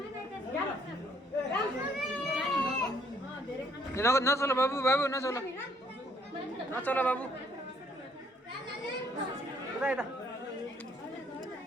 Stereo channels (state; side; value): normal; both; correlation 0.66